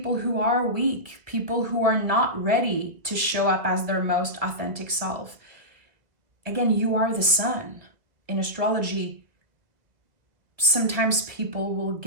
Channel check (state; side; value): late; left; 1.7 ms